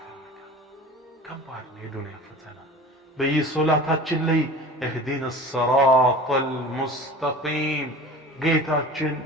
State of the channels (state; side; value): normal; both; correlation 0.39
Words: ከባድ ነው የዱንያ ፈተና በየሶላታችን ላይ اهدنا الصراط المستقيم ጌታችን